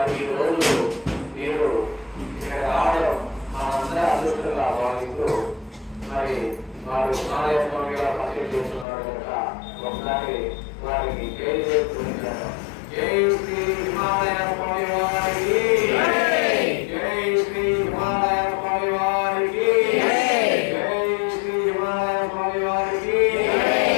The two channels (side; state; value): right; drops out; at 8.8 s